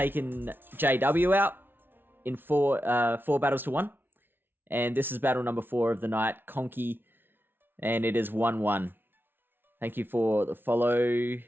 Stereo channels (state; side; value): late; left; 0.10 ms